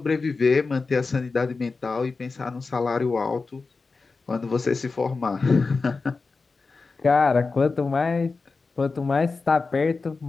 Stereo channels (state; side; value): quieter; right; 4.2 dB